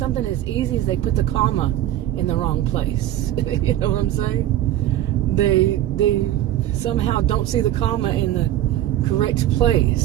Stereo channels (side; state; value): left; quieter; 12.9 dB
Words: as easy as they put the comma in the wrong place. You know what I'm saying? They somehow don't see the comma in the correct